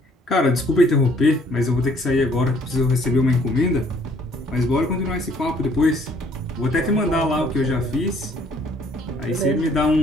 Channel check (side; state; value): both; normal; correlation 0.61